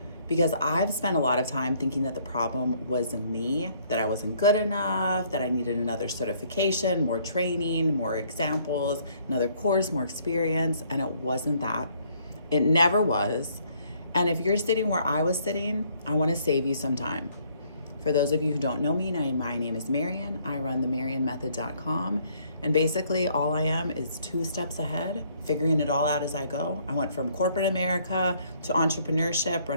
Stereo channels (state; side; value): inverted; both; correlation -0.65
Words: because I've spent a lot of time thinking that the problem was me, that I wasn't good enough, that I needed another certification, more training, more examples, another course, more experience, and it wasn't that. It never was. And if you're sitting where I was sitting, I want to save you some time. For those of you who don't know me, my name is Marian. I run the MarianMethod.com. And basically, all I am is 2 steps ahead, figuring it all out as I go. I went from corporate America to entrepreneurship,